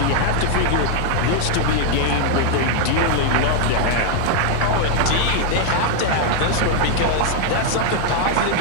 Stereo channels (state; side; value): different; both; correlation 0.00